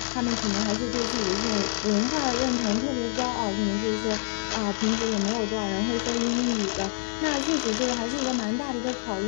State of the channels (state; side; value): silent; right; 60 dB below the other